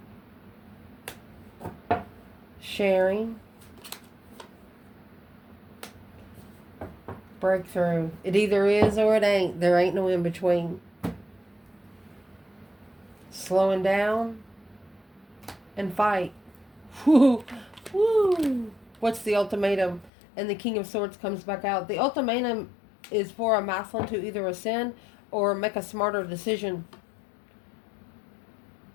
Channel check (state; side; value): drops out; right; at 20.1 s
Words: Sharing. Breakthrough. It either is or it ain't. There ain't no in between. Slowing down and fight. Woo. Woo. What's the ultimatum? And the King of Swords comes back out. The ultimatum is for a masculine to either ascend or make a smarter decision.